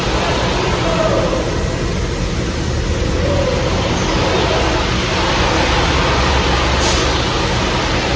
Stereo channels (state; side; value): identical; both; correlation 1.00